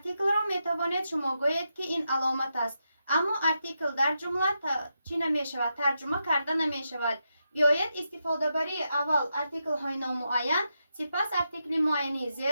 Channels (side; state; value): both; inverted; correlation -0.85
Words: را میتوانید شما گویید که این علامت است، اما ارتیکل در جمله چی نمی شود؟ ترجمه کرده نمی شود. بیایید استفاده بری اول ارتیکل های نامعین، سپس ارتیکل معینی ز